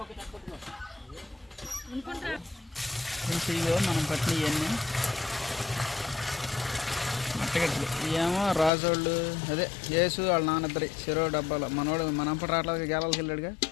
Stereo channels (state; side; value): drops out; right; at 8.7 s